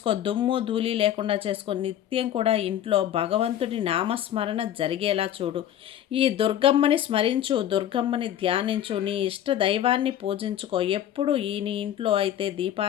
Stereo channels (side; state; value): right; quieter; 11.0 dB